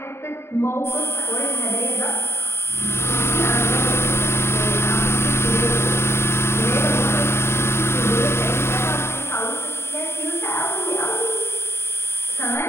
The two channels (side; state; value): right; late; 0.12 ms